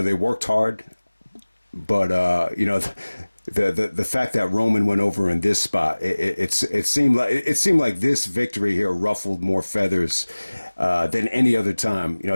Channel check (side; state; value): both; inverted; correlation -1.00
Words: worked hard, but the fact that Roman went over in this spot, it seemed like this victory here ruffled more feathers than any other time,